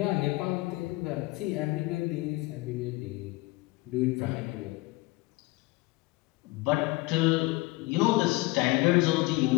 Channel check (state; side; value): quieter; right; 21.8 dB